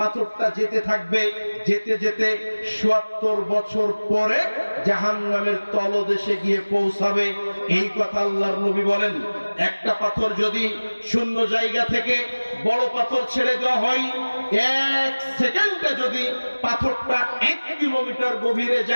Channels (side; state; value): both; inverted; correlation -1.00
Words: যেতে থাকবে, যেতে যেতে ৭০ বছর পরে জাহান্নামের তলদেশে গিয়ে পৌঁছাবে। এই কথা আল্লাহর নবী বলেন। একটা পাথর যদি শূন্য জায়গা থেকে বড় পাথর ছেড়ে দেওয়া হয়, ১ সেকেন্ডে যদি পাথরটা ১ কিলোমিটার গভীরে